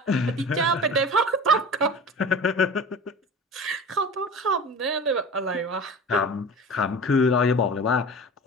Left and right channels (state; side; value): normal; both; correlation 0.36